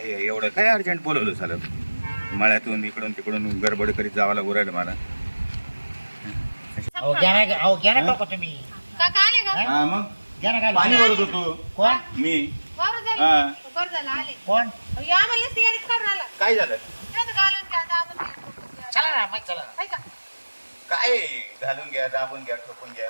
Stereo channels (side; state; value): both; inverted; correlation -1.00